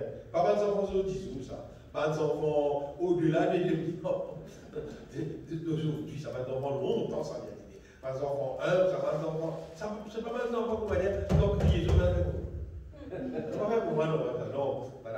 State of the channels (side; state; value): both; identical; correlation 1.00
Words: pas d'enfants sur 10 jours, ça. Pas d'enfants au-delà des 2000 ans d'aujourd'hui, ça va être d'enfants longtemps, ça vient d'aider. Pas d'enfants 1, ça va d'enfants, c'est pas mal d'enfants qu'on va dire, donc priez, je vais c'est pas vrai pour moi, non,